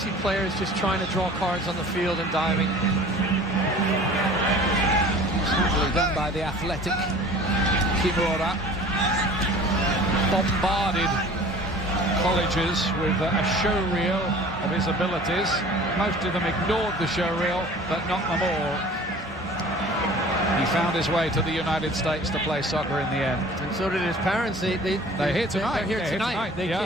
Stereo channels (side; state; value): both; normal; correlation 0.45